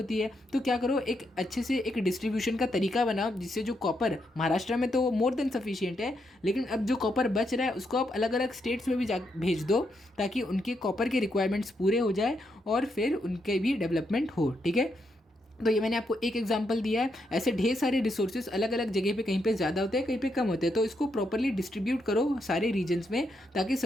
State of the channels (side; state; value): both; normal; correlation 0.80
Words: है। तो क्या करो, एक अच्छे से एक डिस्ट्रीब्यूशन का तरीका बनाओ जिससे जो कॉपर महाराष्ट्र में तो मोर देन सफिशिएंट है, लेकिन अब जो कॉपर बच रहा है उसको आप अलग अलग स्टेट्स में भी भेज दो ताकि उनके कॉपर के रिक्वायरमेंट्स पूरे हो जाए और फिर उनके भी डेवलपमेंट हो, ठीक है। तो ये मैंने आपको एक एग्जांपल दिया है। ऐसे ढेर सारे रिसोर्सेज अलग अलग जगह पे, कहीं पे ज़्यादा होते हैं कहीं पे कम होते हैं, तो इसको प्रॉपरली डिस्ट्रीब्यूट करो सारे रीजन्स में ताकि